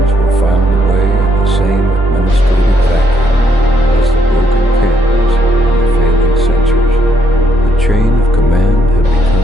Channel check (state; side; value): normal; both; correlation 0.73